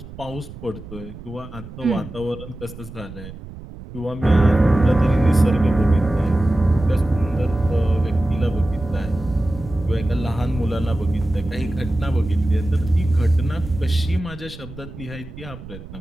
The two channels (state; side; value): noise; right; rumble, 14 dB below the sound